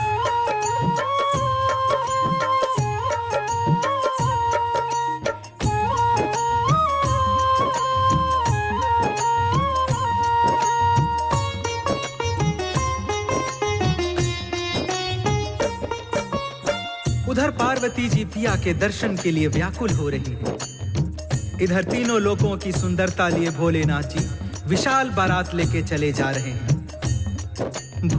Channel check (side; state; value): both; identical; correlation 1.00